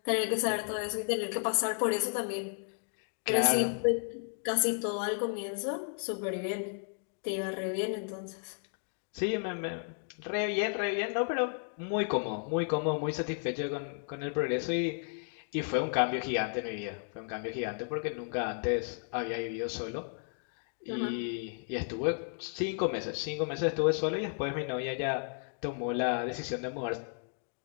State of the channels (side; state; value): right; silent; 55 dB below the other